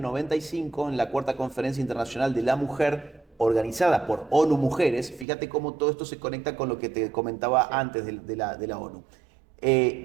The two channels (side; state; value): left; drops out; at 5.2 s